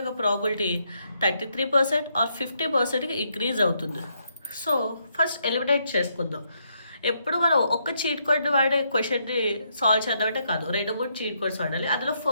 ప్రాబిలిటీ 33% ఆర్ 50%కి ఇంక్రీజ్ అవుతుంది. సో ఫస్ట్ ఎలిమినేట్ చేసుకుందాం. ఎప్పుడు మనం ఒక్క చీట్ కోడ్ వాడే క్వశ్చన్ని సాల్వ్ చేద్దామంటే కాదు, 2-3 చీట్ కోడ్స్ వాడాలి. అందులో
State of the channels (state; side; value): inverted; both; correlation -0.76